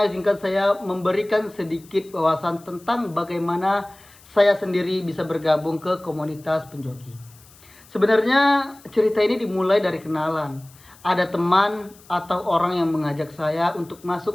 izinkan saya memberikan sedikit wawasan tentang bagaimana saya sendiri bisa bergabung ke komunitas penjoki. Sebenarnya cerita ini dimulai dari kenalan. Ada teman atau orang yang mengajak saya untuk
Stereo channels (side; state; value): left; noise; hiss, 25 dB below the sound